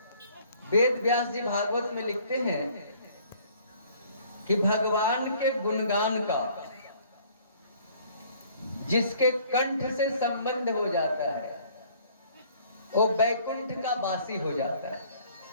वेद व्यास जी भागवत में लिखते हैं कि भगवान के गुणगान का जिसके कंठ से संबंध हो जाता है वो बैकुंठ का वासी हो जाता है,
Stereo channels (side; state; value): both; inverted; correlation -0.57